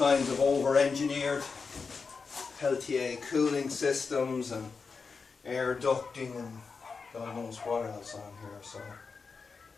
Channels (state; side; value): quieter; right; 4.9 dB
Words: of over-engineered Peltier cooling systems and air ducting and God knows what else on here, so